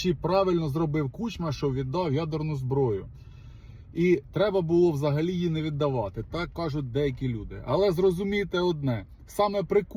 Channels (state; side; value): identical; both; correlation 1.00